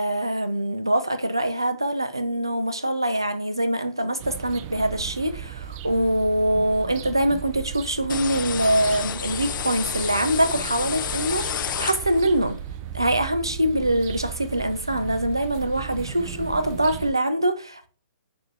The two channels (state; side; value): inverted; both; correlation -0.80